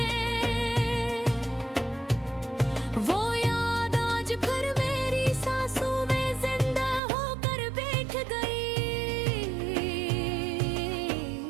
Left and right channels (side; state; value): left; drops out; at 7.0 s